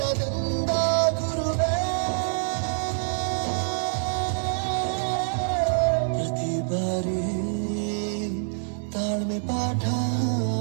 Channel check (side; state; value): left; silent; digital silence